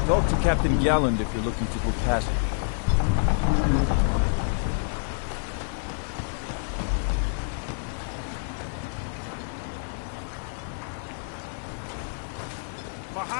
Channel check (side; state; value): right; silent; digital silence